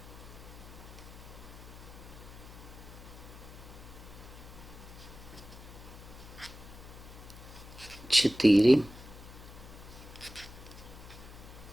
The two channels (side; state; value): left; noise; hum, 15 dB below the sound